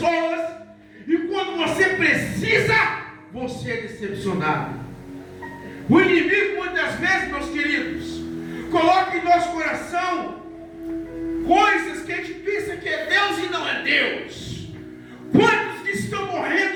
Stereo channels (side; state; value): both; identical; correlation 1.00